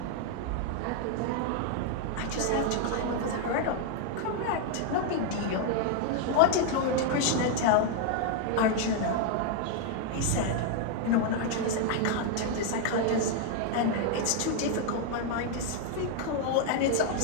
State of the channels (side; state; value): both; different; correlation 0.00